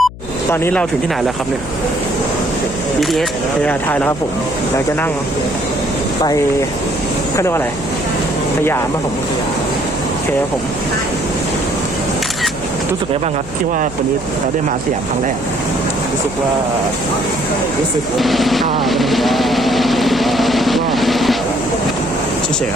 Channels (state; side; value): noise; left; hum, 14 dB below the sound